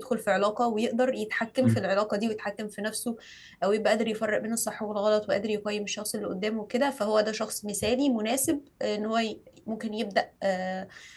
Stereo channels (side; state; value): both; identical; correlation 1.00